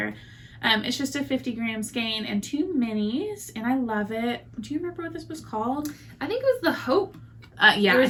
It's just a 50-gram skein and 2 minis, and I love it. Do you remember what this was called? I think it was the Hope. Yeah. There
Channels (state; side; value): identical; both; correlation 1.00